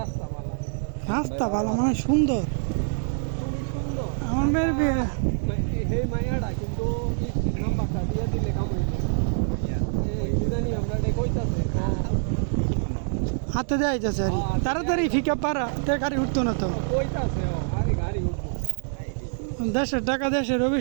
মালা রাস্তা ভালো মানে সুন্দর খুবই সুন্দর আমার মেয়ের বিয়ে হে মায়াটা কিন্তু নাম্বারটা দিয়ে দিলে কাম কি জানি আমরা এটা কইতাছে হাতে দেওয়া যাচ্ছে আর তাড়াতাড়ি ফিকা পারা তে গাড়ি উঠতো না তো কইতাছে আরে গাড়ি উঠবো দেশের টাকা দেশের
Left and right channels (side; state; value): left; silent; digital silence